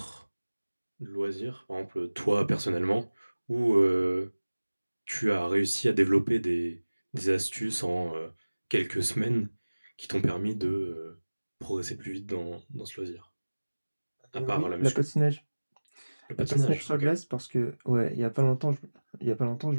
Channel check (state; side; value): inverted; both; correlation -1.00